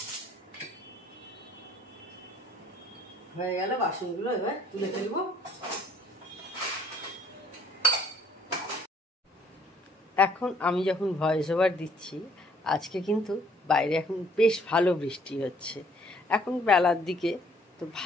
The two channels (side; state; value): both; normal; correlation 0.61